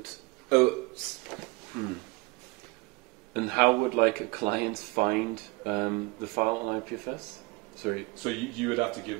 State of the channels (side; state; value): left; quieter; 26.1 dB